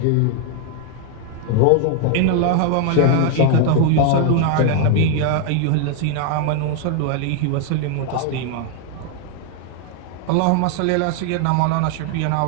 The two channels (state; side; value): different; both; correlation 0.00